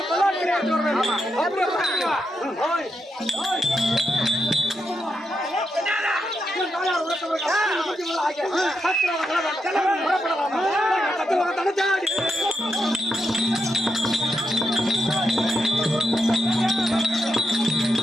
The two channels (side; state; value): both; normal; correlation 0.83